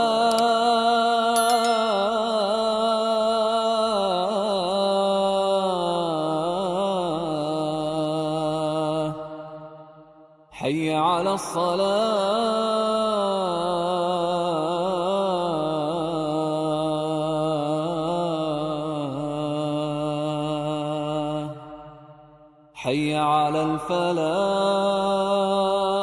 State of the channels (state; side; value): identical; both; correlation 1.00